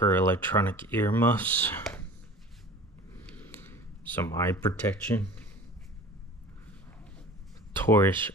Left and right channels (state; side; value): normal; both; correlation 0.41